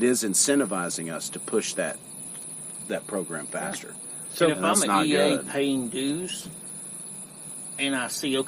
is incentivizing us to push that program faster. So if I'm that's an not EA good. paying dues, and I see,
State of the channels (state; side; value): identical; both; correlation 1.00